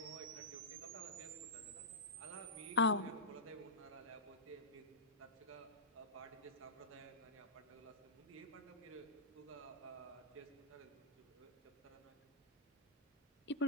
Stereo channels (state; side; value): normal; both; correlation -0.15